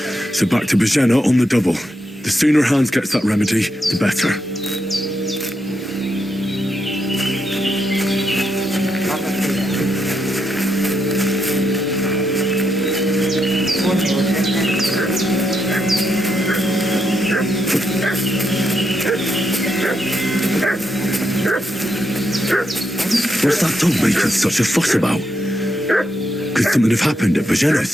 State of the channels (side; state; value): both; normal; correlation 0.81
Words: so back to Bajena on the double. The sooner Hans gets that remedy, the better. What's that dog making such a fuss about? Could something have happened at Bajena's?